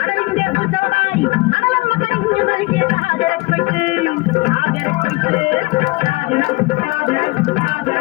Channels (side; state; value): right; quieter; 23.1 dB